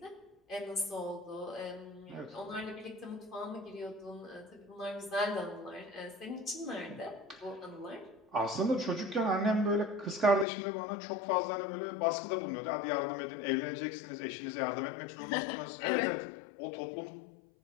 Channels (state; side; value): drops out; right; at 10.5 s